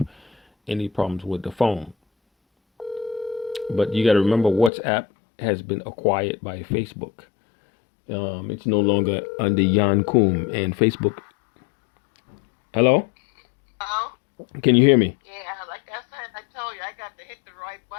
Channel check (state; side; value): drops out; right; at 4.7 s